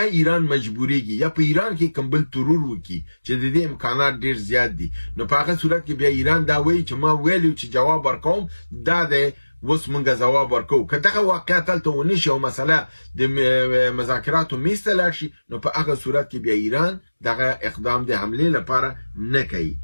ایران مجبوریږي یا په ایران کې کوم بل ترور وکړي چې د دې امکانات ډیر زیات دي نو په هغه صورت کې بیا ایران دا وایي چې ما ویلو چې جواب ورکوم دا د اوس موږ ځواب ورکوو که دغه واقعیت هلته ونه شي او مسله د مذاکراتو میز ته لاړ شي نو په هغه صورت کې بیا ایران دغه اقدام د حملې لپاره نه کوي.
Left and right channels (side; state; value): both; inverted; correlation -1.00